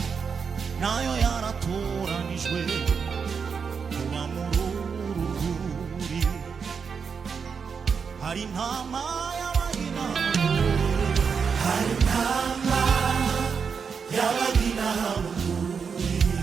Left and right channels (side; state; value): left; quieter; 6.0 dB